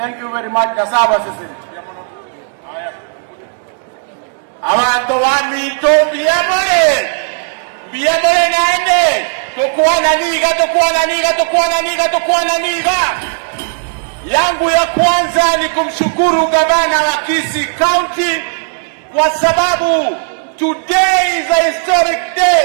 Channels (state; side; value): silent; left; digital silence